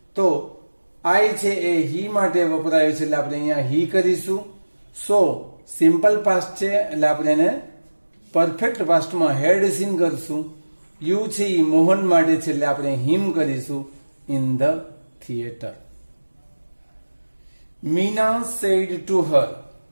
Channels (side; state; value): both; inverted; correlation -1.00